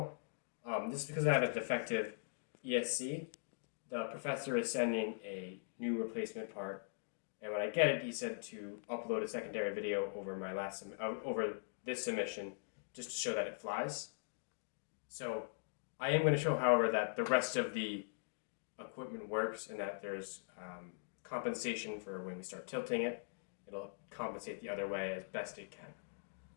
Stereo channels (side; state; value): right; silent; digital silence